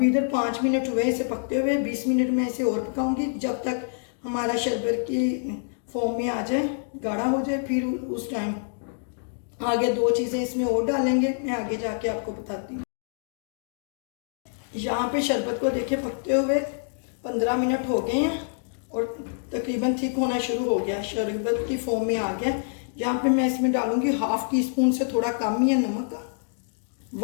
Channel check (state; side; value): silent; right; digital silence